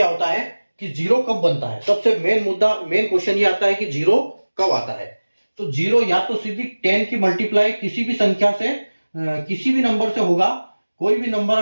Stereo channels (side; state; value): both; inverted; correlation -1.00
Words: होता है कि जीरो कब बनता है। सबसे मेन मुद्दा, मेन क्वेश्चन ये आता है कि जीरो कब आता है। तो जीरो या तो सीधी 10 की मल्टीप्लाई किसी भी संख्या से, किसी भी नंबर से होगा। कोई भी नंबर